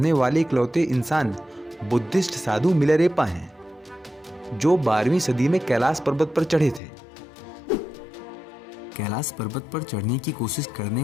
वाले इकलौते इंसान बुद्धिस्ट साधु मिलारेपा हैं, जो 12वीं सदी में कैलाश पर्वत पर चढ़े थे। कैलाश पर्वत पर चढ़ने की कोशिश करने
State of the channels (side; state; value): right; drops out; at 6.8 s